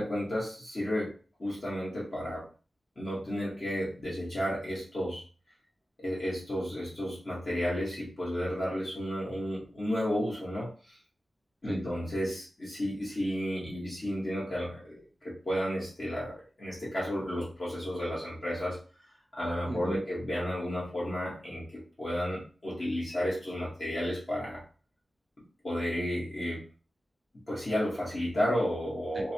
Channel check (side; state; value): both; normal; correlation 0.93